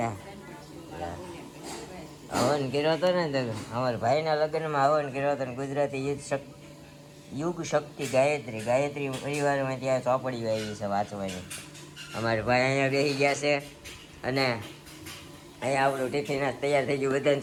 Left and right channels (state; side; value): identical; both; correlation 1.00